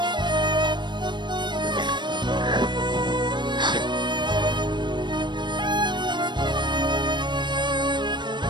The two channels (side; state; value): left; late; 0.22 ms